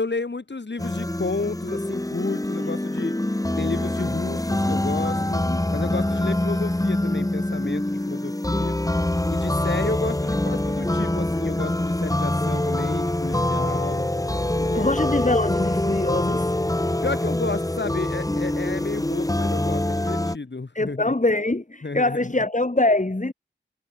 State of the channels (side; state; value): both; normal; correlation 0.72